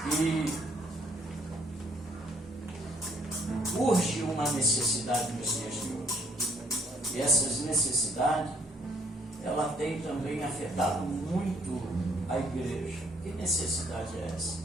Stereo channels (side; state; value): both; normal; correlation 0.66